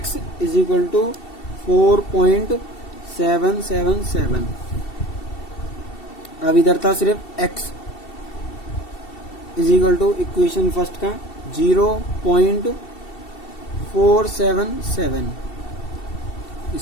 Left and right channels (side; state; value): right; late; 2.7 ms